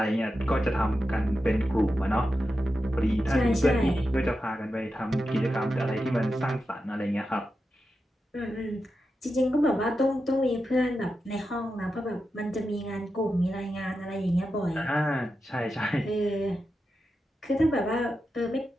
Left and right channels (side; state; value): both; normal; correlation 0.89